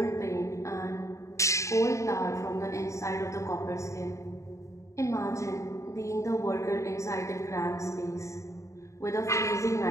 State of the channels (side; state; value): right; late; 0.15 ms